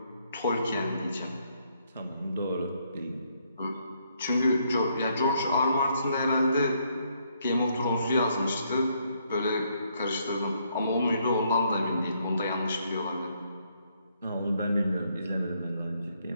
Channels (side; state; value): both; inverted; correlation -0.72